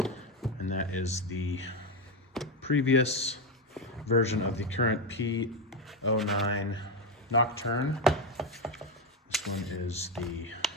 and that is the previous version of the current P-09 Nocturne. This one is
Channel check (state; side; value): normal; both; correlation 0.10